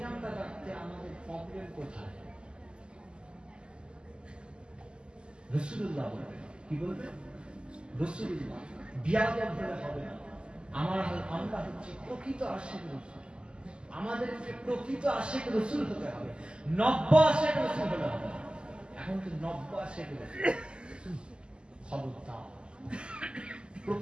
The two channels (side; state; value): left; late; 0.049 ms